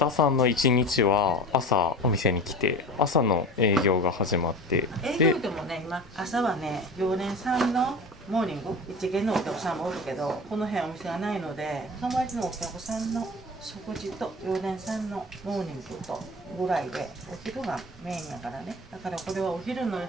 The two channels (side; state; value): both; normal; correlation 0.34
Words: さんの一日は朝お店に来て朝の営業が始まって営業でもね今朝はね常連さんのモーニング一見のお客さんもおるけどこの辺お店がないので友達のお客さんの食事と常連さんのモーニングとぐらいでお昼がメインやからね。だからこれはお昼の